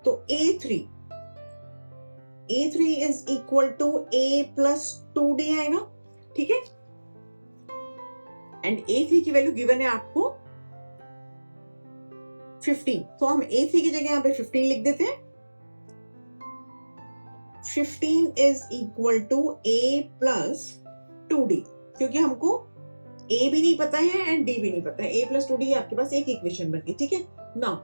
तो A3 is equal to A plus 2D आएगा, ठीक है। एंड A3 की वैल्यू गिवन है आपको 15, तो हम A3 की जगह यहाँ पे 15 लिख देते हैं। 15 is equal to A plus 2D, क्योंकि हमको A भी नहीं पता है एंड D भी नहीं पता है, A plus 2D आपके पास एक इक्वेशन बन गई, ठीक है। नाउ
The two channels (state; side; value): inverted; both; correlation -1.00